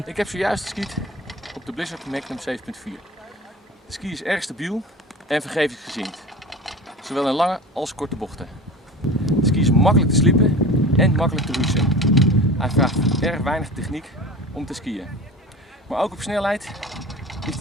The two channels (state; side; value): normal; both; correlation 0.35